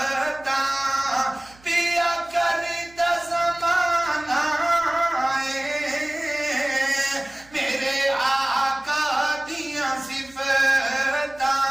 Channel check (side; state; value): right; noise; hum, 26 dB below the sound